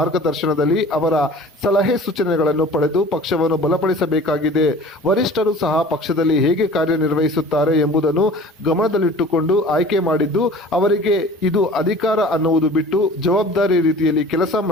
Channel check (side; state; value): both; normal; correlation 0.44